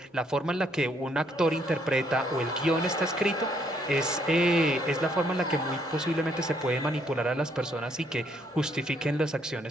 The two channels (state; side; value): normal; both; correlation 0.69